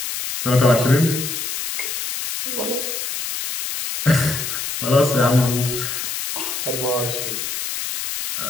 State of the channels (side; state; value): left; noise; hiss, 4 dB below the sound